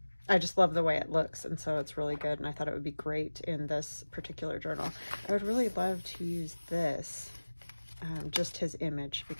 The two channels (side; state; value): both; inverted; correlation -1.00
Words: just love the way it looks, and so it's really good, and I thought it would be great in this particular journal. I would really love to use this, just his image,